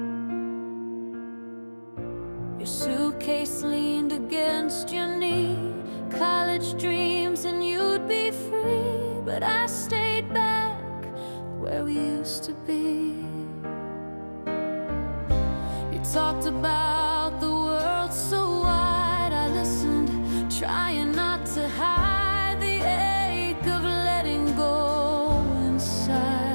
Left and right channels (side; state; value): both; inverted; correlation -1.00